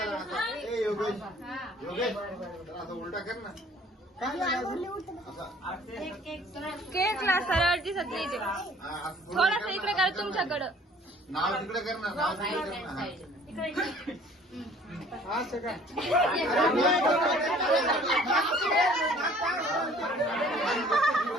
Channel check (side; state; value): both; normal; correlation 0.54